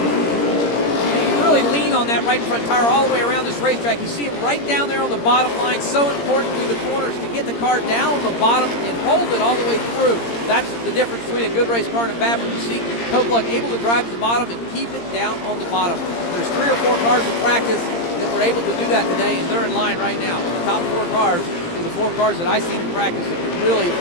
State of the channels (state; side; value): late; right; 17 ms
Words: You really lean on that right front tire all the way around this racetrack. You see him right down there on the bottom line. So important through the corners to get the car down on the bottom and hold it all the way through. That's the difference between a good race car and a bad one. You see Kobeluk able to drive to the bottom and keep it down on the bottom. There's 3 or 4 cars in practice that were able to do that today, and they're in line right now. The top 4 cars are the 4 cars that I've seen in practice that can really